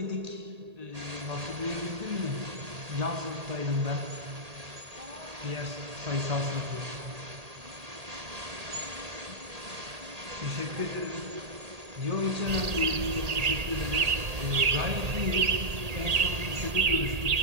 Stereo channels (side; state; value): left; late; 1.8 ms